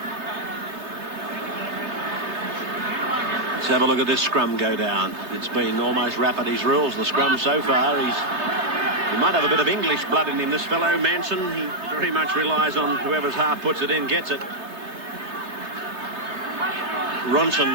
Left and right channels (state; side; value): late; left; 3.3 ms